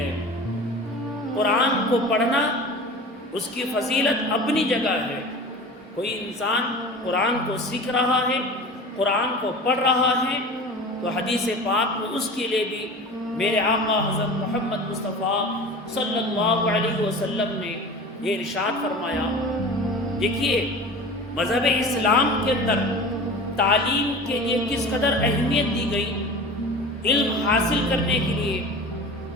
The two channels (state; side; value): normal; both; correlation 0.36